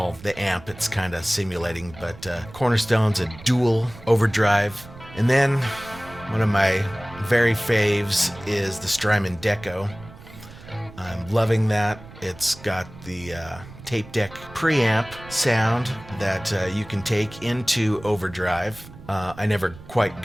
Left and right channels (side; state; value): right; noise; rumble, 18 dB below the sound